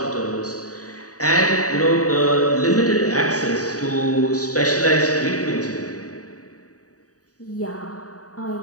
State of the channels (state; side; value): late; right; 0.67 ms